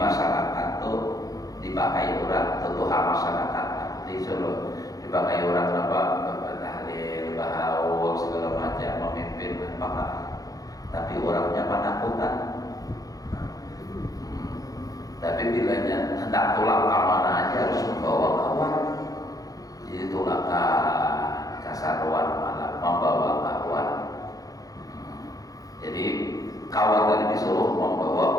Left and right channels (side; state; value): right; late; 0.17 ms